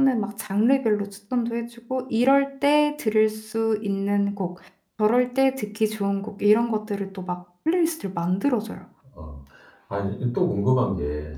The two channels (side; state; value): both; identical; correlation 1.00